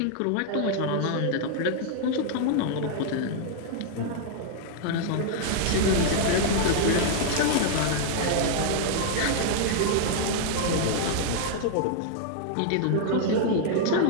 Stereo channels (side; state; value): both; different; correlation -0.01